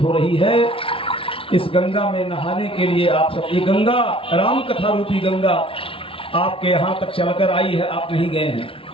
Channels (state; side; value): late; right; 0.26 ms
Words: हो रही है। इस गंगा में नहाने के लिए आप सब, ये गंगा, राम कथा रूपी गंगा आपके यहाँ तक चलकर आई है, आप नहीं गए हैं।